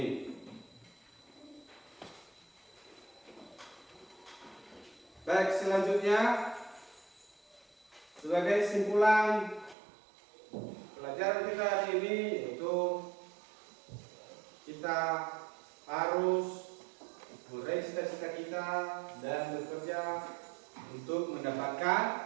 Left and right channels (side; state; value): left; drops out; at 9.8 s